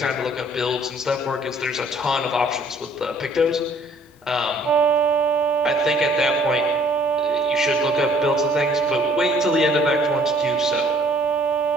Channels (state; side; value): normal; both; correlation 0.59